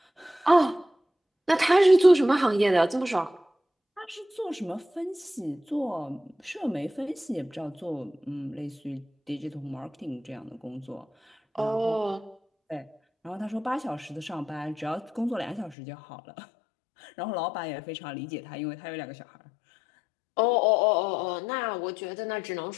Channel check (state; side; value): drops out; right; at 15.8 s